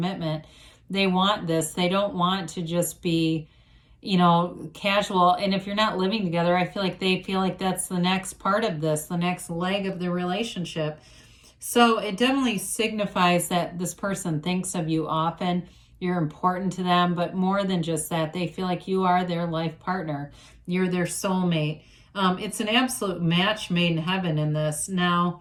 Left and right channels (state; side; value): identical; both; correlation 1.00